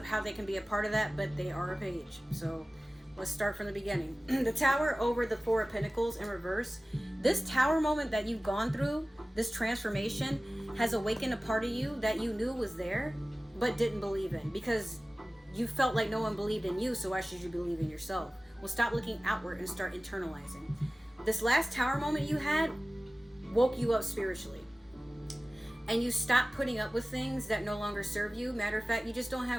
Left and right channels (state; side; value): normal; both; correlation 0.97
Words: how they can be a part of that, but they are a page. So let's start from the beginning. The Tower over the Four of Pentacles in reverse. This Tower moment that you've gone through, this transformation, has awakened a part of you that you knew was there, but didn't believe in, because you felt like no one believed in you, so why should you believe in yourself? Well, stop looking outward and start internalizing. This last Tower moment you had woke you up spiritually. And you stop putting up with things that no longer serve you. Matter of fact, you just don't